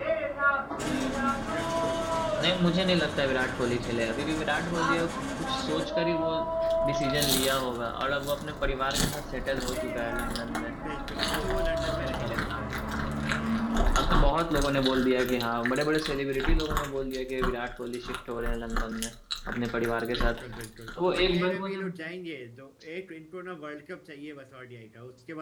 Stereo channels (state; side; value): identical; both; correlation 1.00